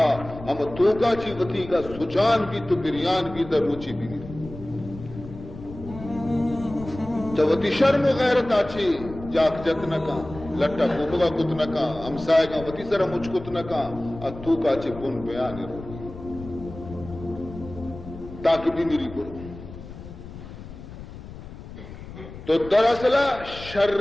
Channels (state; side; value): noise; left; rumble, 14 dB below the sound